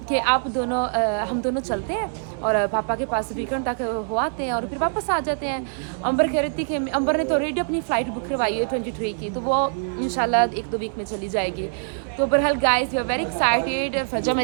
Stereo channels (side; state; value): left; silent; 59 dB below the other